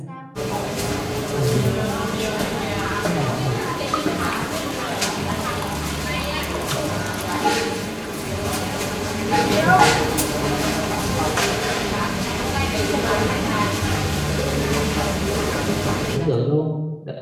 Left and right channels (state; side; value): identical; both; correlation 1.00